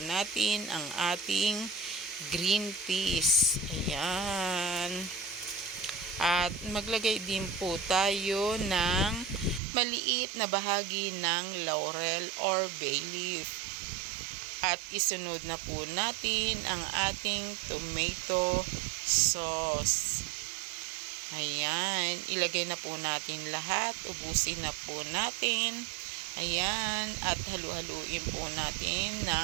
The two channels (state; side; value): drops out; left; at 9.6 s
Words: natin ang ating green peas. Ayan. At maglagay din po tayo ng maliit na bahagi ng laurel or bay leaf. At isunod na po natin ang ating tomato sauce. Ayan, ilagay na po natin lahat. Ubusin na po natin. Ayan, at halu-haluin po natin